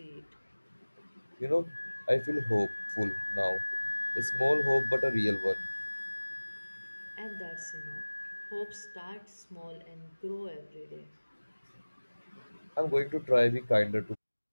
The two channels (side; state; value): both; inverted; correlation -1.00